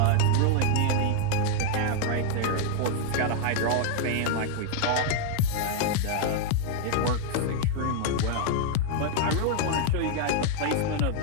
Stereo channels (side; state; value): both; different; correlation 0.00